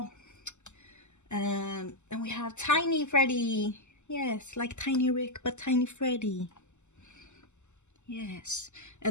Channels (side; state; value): right; late; 0.83 ms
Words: And then we have Tiny Freddy. Yes, like Tiny Rick, but Tiny Freddy. Yes,